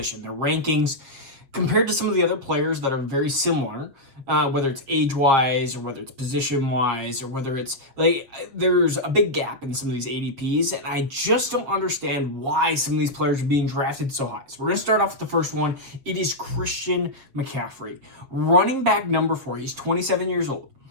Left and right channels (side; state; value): left; late; 7.2 ms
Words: their rankings, compared to some of the other players that are very similar, whether it's age-wise or whether it's position-wise or whether it's, there's a big gap in some of these ADPs, and I just don't understand why some of these players are being drafted so high. So we're going to start off with the first one. It is Christian McCaffrey. Running back number 4. He's 27 years old.